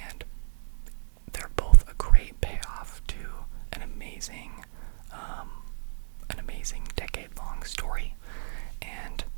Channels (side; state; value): left; silent; 58 dB below the other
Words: they're both a great payoff to an amazing decade-long story. And